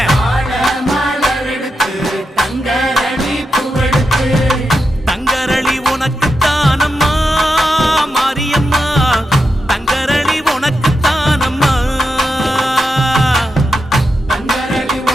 தங்கரளி உனக்கு தானம்மா மாரியம்மா தங்கரளி உனக்கு தானம்மா தங்கரளி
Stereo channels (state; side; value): normal; both; correlation 0.87